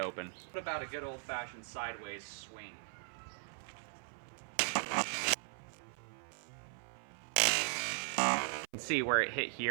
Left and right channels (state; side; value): silent; left; 52 dB below the other